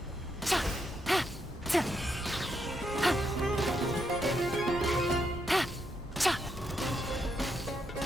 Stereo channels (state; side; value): normal; both; correlation 0.79